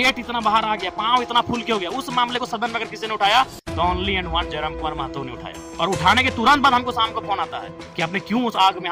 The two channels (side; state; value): both; identical; correlation 1.00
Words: इतना बाहर आ गया, पांव इतना फूल के हो गया। उस मामले को सदन में अगर किसी ने उठाया तो only and one Jayram Kumar Mahato ने उठाया, और उठाने के तुरंत बाद हमको शाम को फोन आता है कि आपने क्यों उस आग में